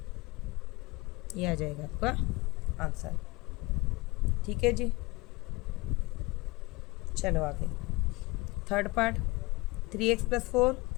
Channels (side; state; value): right; quieter; 23.1 dB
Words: ये आ जाएगा आपका आंसर। ठीक है जी, चलो आगे। Third part, 3x + 4